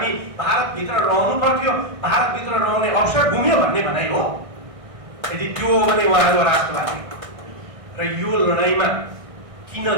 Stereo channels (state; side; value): late; left; 1.6 ms